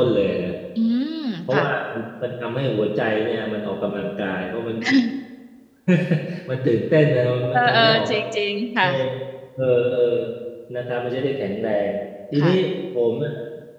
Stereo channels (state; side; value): identical; both; correlation 1.00